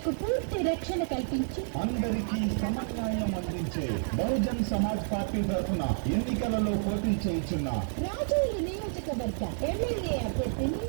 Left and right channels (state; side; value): silent; left; 58 dB below the other